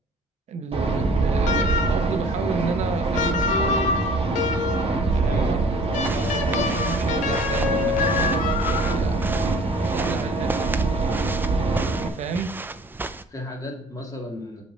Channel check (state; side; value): normal; both; correlation 0.50